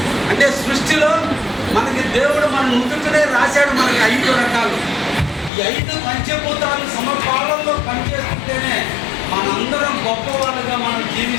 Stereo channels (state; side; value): drops out; right; at 5.5 s